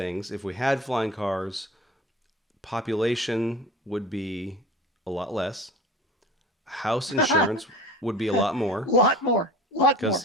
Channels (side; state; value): both; normal; correlation 0.39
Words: If we had flying cars, population would be a lot less. House A insurance would be a lot more lot more.